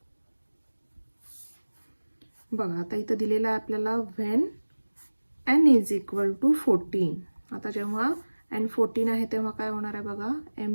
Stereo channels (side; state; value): both; inverted; correlation -1.00